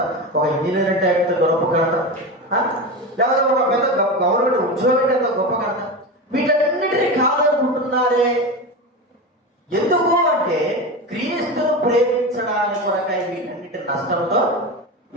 ఒక ఇంజనీర్ అంటే ఎంత గొప్ప ఘనత, లేకపోతే ఒక పెద్ద గవర్నమెంట్ ఉద్యోగం అంటే ఎంత గొప్ప ఘనత. వీటన్నిటినీ కాదనుకుంటున్నారే. ఎందుకు అంటే క్రీస్తును ప్రేమించడానికి కొరకై వీటన్నిటి నష్టంతో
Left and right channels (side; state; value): both; normal; correlation 0.22